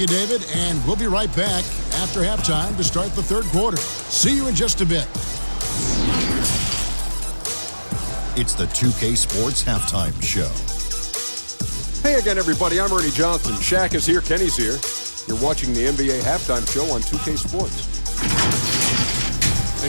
David, and we'll be right back after halftime to start the third quarter. See you in just a bit. It's the 2K Sports Halftime Show. Hey again, everybody. I'm Ernie Johnson. Shaq is here. Kenny's here. You're watching the NBA Halftime Show on 2K Sports.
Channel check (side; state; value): both; inverted; correlation -1.00